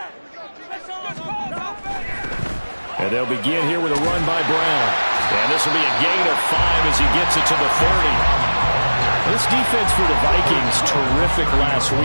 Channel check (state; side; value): inverted; both; correlation -1.00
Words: And they'll begin here with a run by Brown. And this will be a gain of 5 as he gets it to the 30. This defense for the Vikings, terrific last